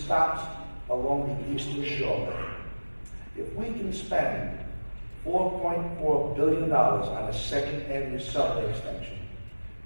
along the Eastern Shore. If we can spend $4.4 billion on a Second Avenue subway extension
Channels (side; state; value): both; inverted; correlation -1.00